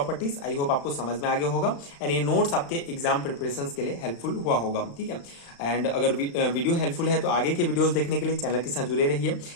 I hope आपको समझ में आ गया होगा एंड ये नोट्स आपके एग्जाम प्रिपरेशंस के लिए हेल्पफुल हुआ होगा, ठीक है। एंड अगर वीडियो हेल्पफुल है तो आगे के वीडियोस देखने के लिए चैनल के साथ जुड़े रहिए।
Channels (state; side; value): late; right; 35 ms